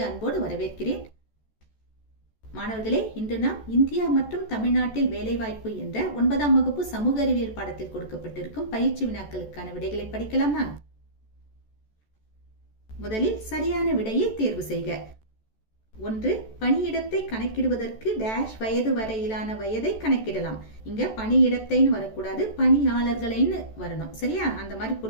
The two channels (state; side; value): late; right; 14 ms